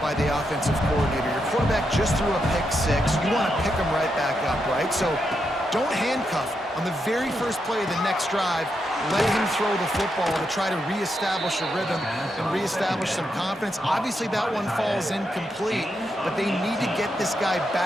by the offensive coordinator. Your quarterback just threw a pick six. You want to pick him right back up, right? So don't handcuff him. On the very first play of the next drive, let him throw the football to try to reestablish a rhythm and reestablish some confidence. Obviously, that one falls incomplete, but they need to get this guy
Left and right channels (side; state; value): both; normal; correlation 0.83